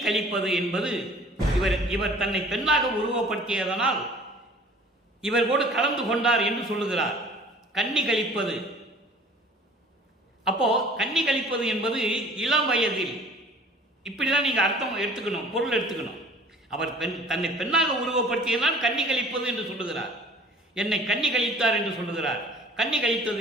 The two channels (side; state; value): both; normal; correlation 0.49